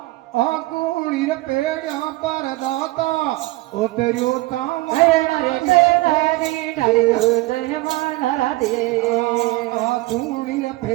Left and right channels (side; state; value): left; quieter; 20.2 dB